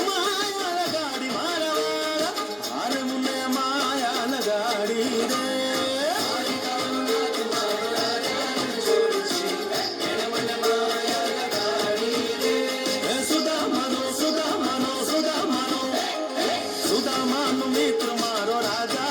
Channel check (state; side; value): identical; both; correlation 1.00